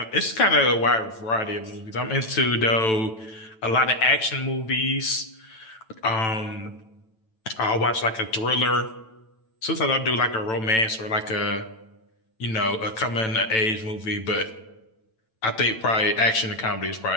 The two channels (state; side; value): late; right; 9.1 ms